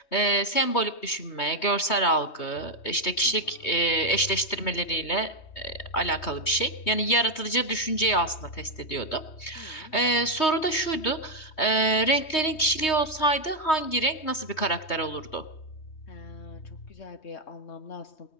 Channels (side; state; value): right; late; 3.2 ms